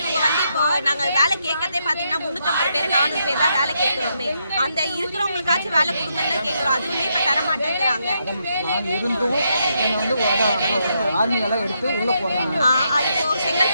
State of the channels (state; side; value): inverted; both; correlation -0.79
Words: வந்து இப்போ நாங்கள் வேலை கேட்கறதே பார்த்தீங்கன்னா 350 பேர் 400 பேர் தான் வேலை கேட்குறோமே. அந்த இருக்கிறவங்களுக்காச்சும் வேலை கொடுங்கன்னு தான் கேட்குறோம். அதுவுமே இப்போ தர மாட்டேங்கிறாங்க. ஆர்மியெல்லாம் எடுத்து உள்ள போறாங்க. இப்போ